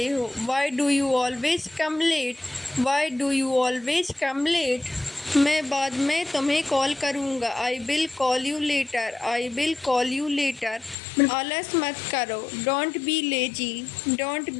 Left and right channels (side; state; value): right; drops out; at 11.0 s